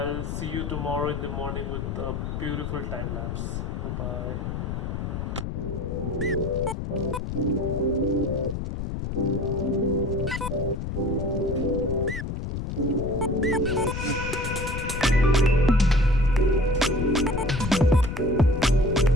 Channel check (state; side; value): noise; left; rumble, 4 dB below the sound